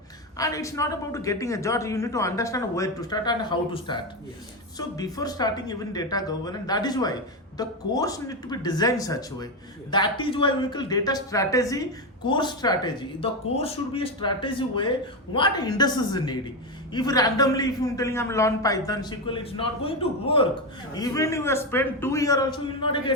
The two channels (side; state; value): both; normal; correlation 0.12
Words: And it's not about getting a job. You need to understand where to start and how to start. Yes. So before starting even data governance, that is why the course need to be designed such a way. Yes. That is why we call data strategy, course strategy. The course should be a strategy way what industries need. If randomly, if you're telling I'm learn Python, SQL, it's not going to work. Even if you spend 2 years also, you will not